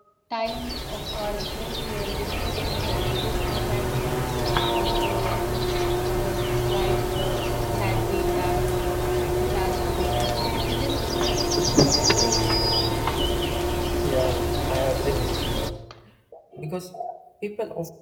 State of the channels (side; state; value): both; identical; correlation 1.00